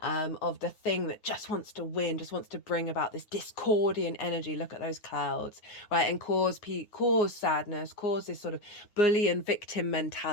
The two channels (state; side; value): late; right; 9.4 ms